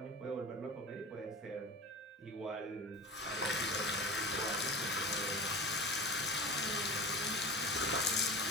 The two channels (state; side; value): normal; both; correlation 0.33